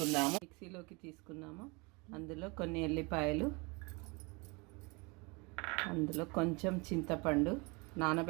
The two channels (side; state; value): left; quieter; 28.2 dB